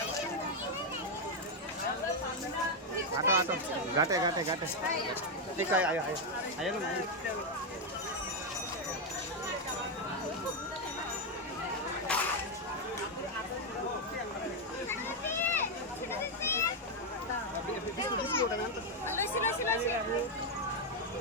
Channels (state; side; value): normal; both; correlation 0.03